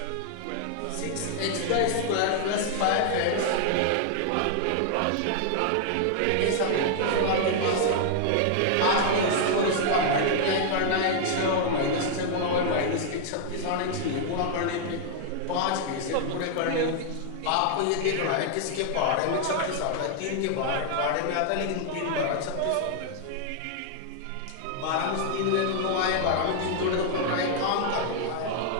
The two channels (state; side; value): different; both; correlation 0.00